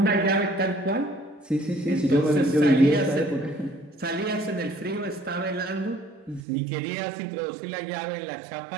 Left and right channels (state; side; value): drops out; left; at 6.4 s